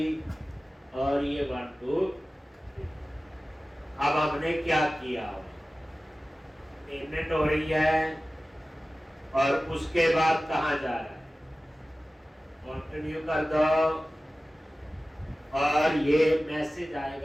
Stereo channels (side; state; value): both; normal; correlation 0.96